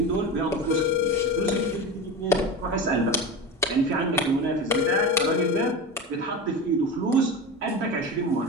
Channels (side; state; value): both; normal; correlation 0.26